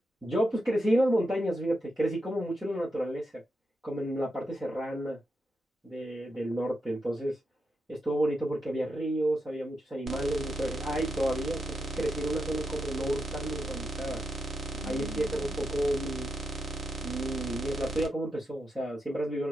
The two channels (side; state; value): both; normal; correlation 0.85